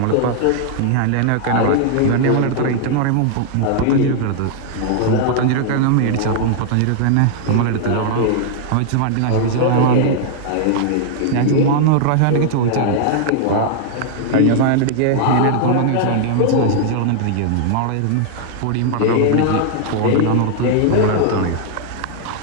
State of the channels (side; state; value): both; different; correlation 0.00